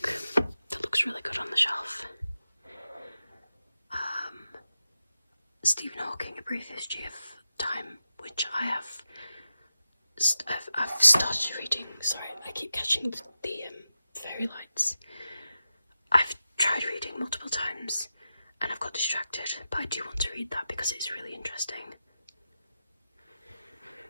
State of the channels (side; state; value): both; inverted; correlation -0.91